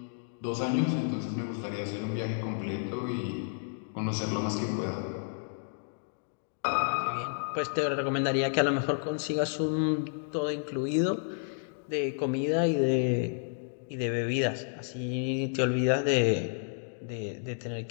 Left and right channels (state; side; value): silent; right; digital silence